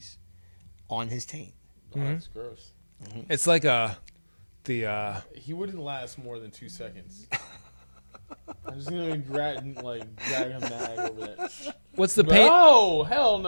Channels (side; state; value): both; inverted; correlation -1.00